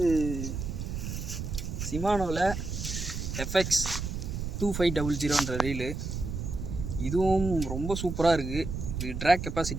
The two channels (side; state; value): right; noise; rumble, 5 dB below the sound